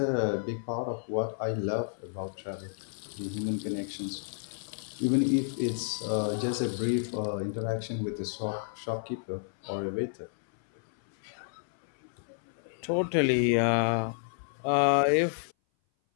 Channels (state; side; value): silent; right; 57 dB below the other